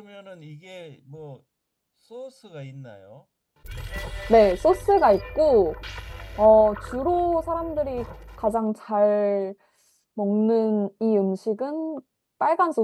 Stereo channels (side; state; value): both; identical; correlation 1.00